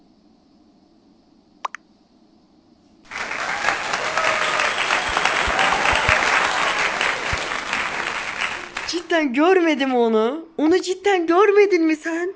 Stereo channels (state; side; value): identical; both; correlation 1.00